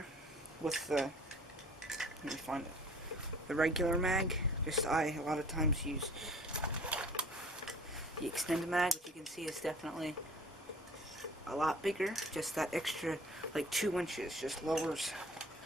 With the, let me find it, the regular mag. I a lot of times use the extended mag, which you can see is definitely a lot bigger. Just that extra, like 2 inches, just lowers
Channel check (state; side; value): normal; both; correlation 0.48